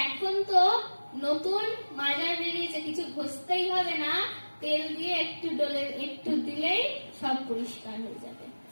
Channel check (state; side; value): inverted; both; correlation -1.00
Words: এখন তো নতুন মাজার বেরিয়েছে, কিছু ঘষতেই হবে না, তেল দিয়ে একটু দিলেই সব পরিষ্কার হয়ে যাবে।